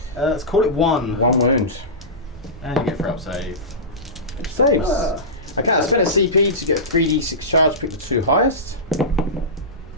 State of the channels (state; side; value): normal; both; correlation -0.18